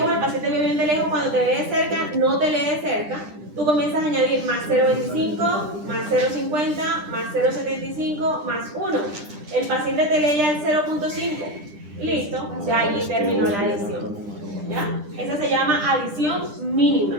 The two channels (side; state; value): left; late; 10 ms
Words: el paciente vio bien de lejos, cuando te lee de cerca, no te lee de cerca, tú comienzas a añadir más 0.25, más 0.50, más 0.75, más 1. El paciente te lee ya el 0.5. Listo, ya ahí terminó la adición. ¿Ya? Esa se llama adición